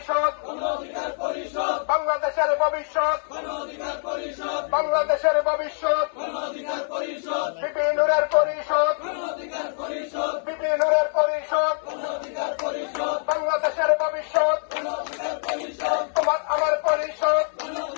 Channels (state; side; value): silent; right; 62 dB below the other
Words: বাংলাদেশের ভবিষ্যৎ, বাংলাদেশের ভবিষ্যৎ, বিপি নুরের পরিষদ, বিপি নুরের পরিষদ, বাংলাদেশের ভবিষ্যৎ, তোমার আমার পরিষদ,